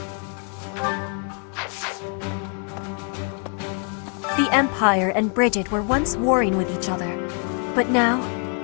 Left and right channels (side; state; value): right; quieter; 40.0 dB